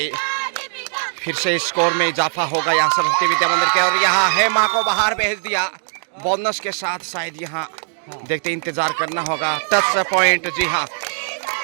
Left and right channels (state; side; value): silent; left; digital silence